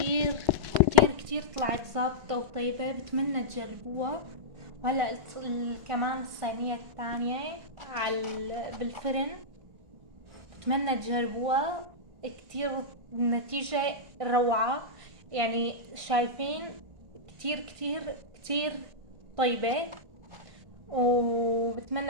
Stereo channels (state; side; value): late; left; 1.5 ms